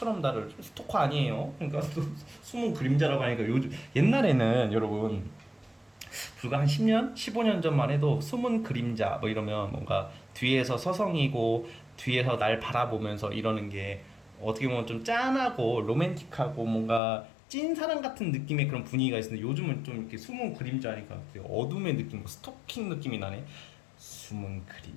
나를, 스토커 아니에요. 그러니까 숨은 그림자라고 하니까, 요즘 옛날에는 여러분 불과 한 10년, 15년 전만 해도 숨은 그림자 뭐 이러면 뭔가 뒤에서 서성이고 뒤에서 날 바라보면서 이러는 게 어떻게 보면 좀 짠하고 로맨틱하고 뭔가 찐사랑 같은 느낌의 그런 분위기가 있었는데, 요즘은 좀 이렇게 숨은 그림자니까 되게 어둠의 느낌, 뭐 스토킹 느낌이 나네. 숨은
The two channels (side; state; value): right; drops out; at 17.0 s